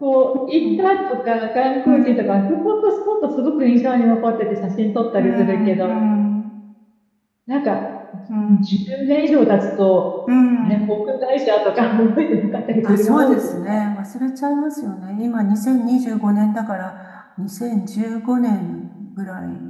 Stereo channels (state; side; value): identical; both; correlation 1.00